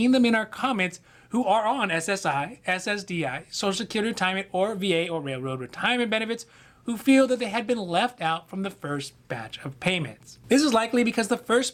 them in our comments, who are on SSI, SSDI, Social Security Retirement, or VA or Railroad retirement benefits, who feel that they had been left out from the first batch of payments. This is likely because the first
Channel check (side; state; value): both; identical; correlation 1.00